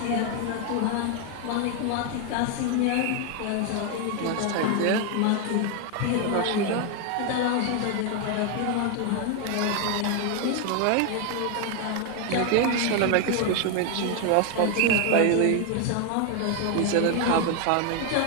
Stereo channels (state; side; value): different; both; correlation 0.01